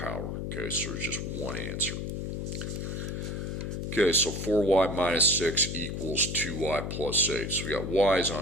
okay, so there's just one answer. Okay, so 4y minus 6 equals 2y plus 8. So we got y's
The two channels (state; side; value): noise; left; hum, 4 dB below the sound